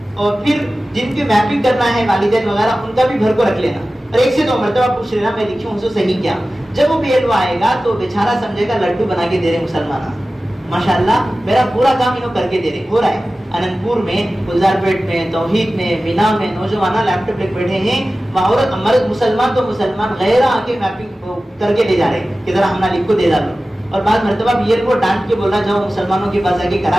اور پھر جن کی میپنگ کرنا ہے والدین وغیرہ ان کا بھی بھر کو رکھ لینا، اور 1 سے 2 مرتبہ پوچھ لینا میں لکھی ہوں صحیح کیا. جب وہ BLO آئے گا تو بیچارہ سمجھے گا لڈو بنا کے دے رہے مسلمان، ماشاءاللہ میرا پورا کام انہوں کر کے دے رہے. ہو رہا ہے اننت پور میں، گلزار پیٹ میں، توحید میں، مینا میں نوجوان لیپ ٹاپ لے بیٹھے ہیں، عورت مرد مسلمان تو مسلمان غیر آ کے میپنگ کر کے لے جا رہے ہیں کہ ذرا ہم لکھ کو دے ڈالو. اور بعض مرتبہ BLO ڈانٹ کے بولا جاؤ مسلمانوں کے پاس آ کے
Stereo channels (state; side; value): normal; both; correlation 0.96